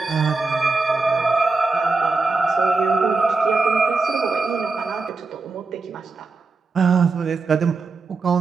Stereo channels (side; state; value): left; quieter; 4.0 dB